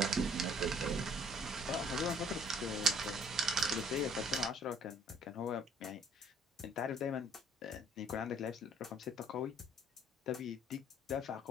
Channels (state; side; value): normal; both; correlation 0.58